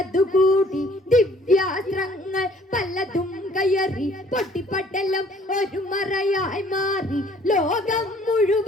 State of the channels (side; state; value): both; normal; correlation 0.58